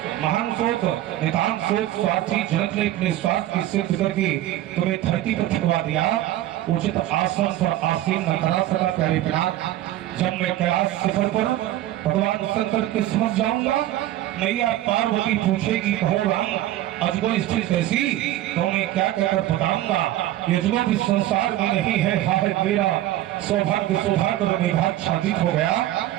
महान शोक, नितांत शोक, स्वार्थी जनक ने अपने स्वार्थ की सिद्ध करके तुम्हें धरती पर ठुकवा दिया। उचित आसन पर आसीन न करा सका प्यारे पिनाक। जब मैं कैलाश शिखर पर भगवान शंकर के समझ जाऊंगा, मैया पार्वती पूछेगी कहो राम अजगो स्थिति कैसी, तो मैं क्या कहकर बताऊंगा। यजगो भी संसार में नहीं है, हाय मेरा सौभाग्य सौभाग्य मेघाच्छादित हो गया,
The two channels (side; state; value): left; quieter; 14.1 dB